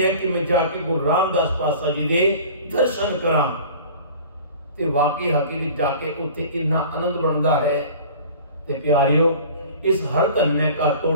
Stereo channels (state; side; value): inverted; both; correlation -0.43